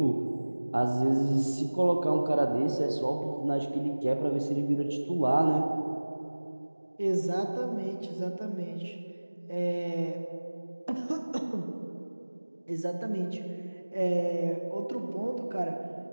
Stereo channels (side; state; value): both; inverted; correlation -1.00